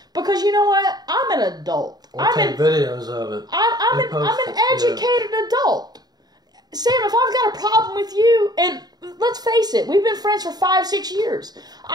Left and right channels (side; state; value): left; late; 0.19 ms